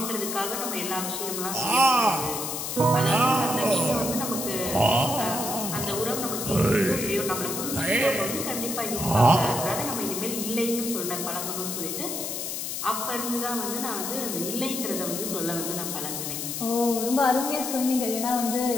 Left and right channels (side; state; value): left; noise; hiss, 4 dB below the sound